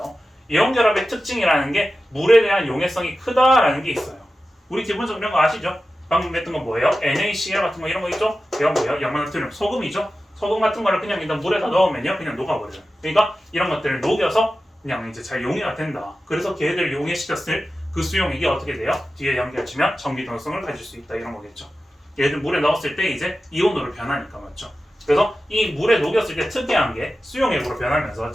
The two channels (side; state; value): both; normal; correlation 0.94